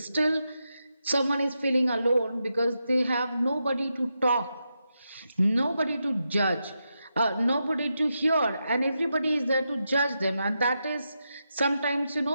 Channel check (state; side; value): inverted; both; correlation -0.86